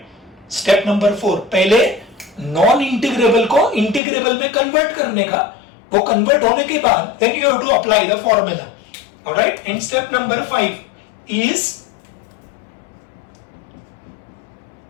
Step number 4. पहले non integrable को integrable में convert करने का, वो convert होने के बाद then you have to apply the formula. Alright, and step number 5 is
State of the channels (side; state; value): right; drops out; at 4.0 s